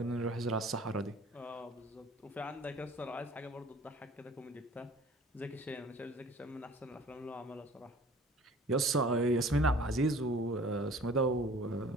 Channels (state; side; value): normal; both; correlation 0.49